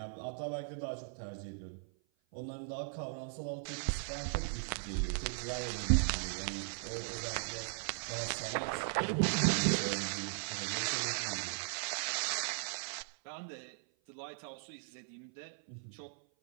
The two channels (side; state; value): left; silent; 52 dB below the other